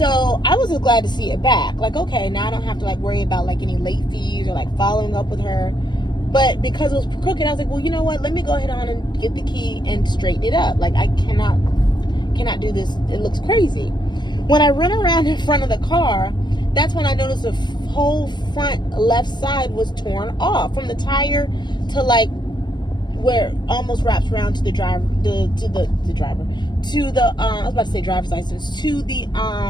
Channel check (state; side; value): late; right; 0.21 ms